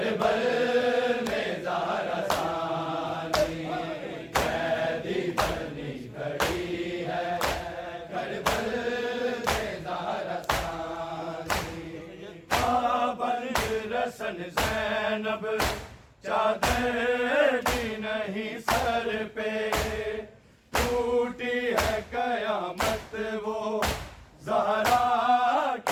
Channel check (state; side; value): identical; both; correlation 1.00